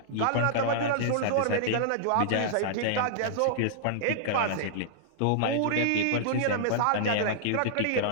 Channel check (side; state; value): both; different; correlation -0.02